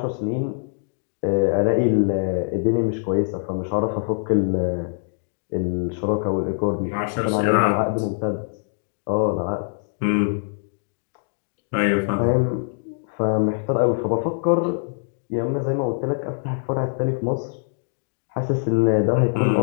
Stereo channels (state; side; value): silent; right; digital silence